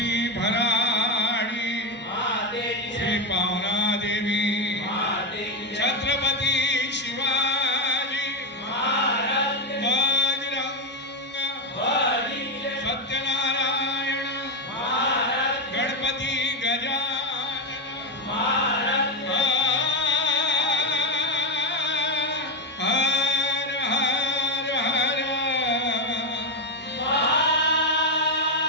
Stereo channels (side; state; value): both; normal; correlation 0.08